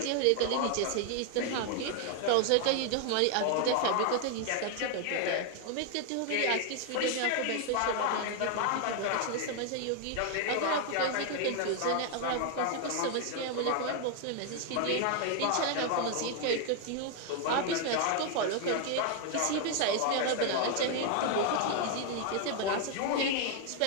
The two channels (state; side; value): different; both; correlation 0.00